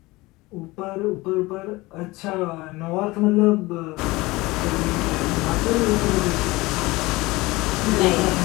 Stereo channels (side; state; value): right; quieter; 21.3 dB